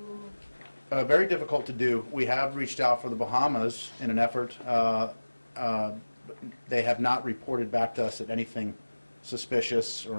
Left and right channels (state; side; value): inverted; both; correlation -1.00